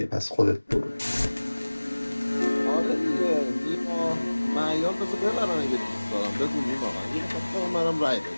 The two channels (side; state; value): both; inverted; correlation -1.00